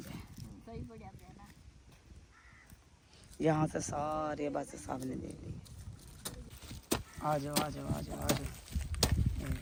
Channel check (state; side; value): identical; both; correlation 1.00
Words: यहाँ से सारे बस सामने दे दी आ जाओ आ जाओ आ जाओ आ जाओ